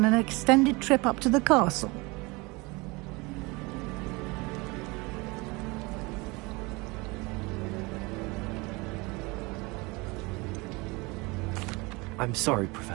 an extended trip up to the castle. I'm sorry,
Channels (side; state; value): left; quieter; 25.2 dB